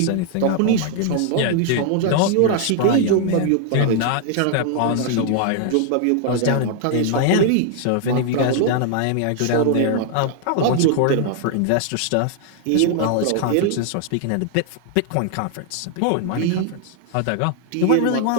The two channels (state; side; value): different; both; correlation 0.00